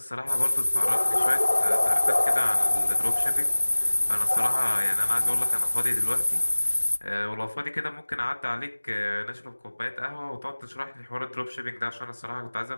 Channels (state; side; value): inverted; both; correlation -1.00